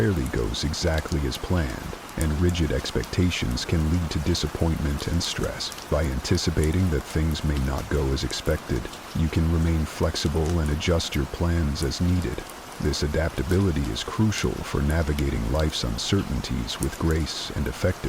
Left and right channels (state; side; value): identical; both; correlation 1.00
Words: goes exactly as planned, and rigid expectations can lead to disappointment and stress. By anticipating that things may not go as expected, you can remain flexible and adjust your plans as needed. This adaptability is crucial for navigating life's uncertainties with grace and